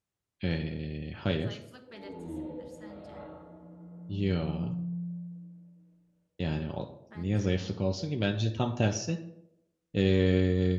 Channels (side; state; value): both; identical; correlation 1.00